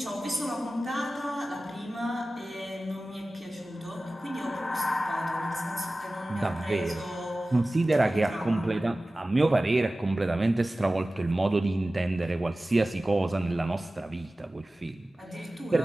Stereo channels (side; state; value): both; normal; correlation 0.97